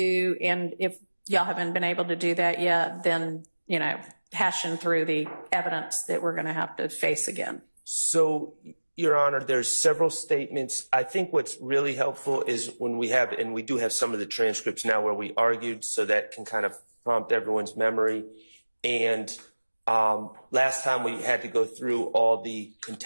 and if y'all haven't been able to do that yet, then, you know, hashing through the evidence that we're going to have to face again? So, Your Honor, there's several statements. I think what's really helpful is when we have, and we do have some of the transcripts now where we argued, so that can kind of prompt everyone's memory. And last time we had to go through all the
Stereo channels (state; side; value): inverted; both; correlation -1.00